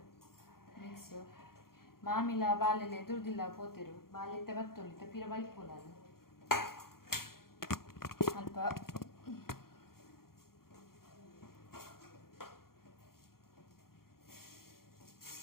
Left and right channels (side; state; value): right; late; 0.93 ms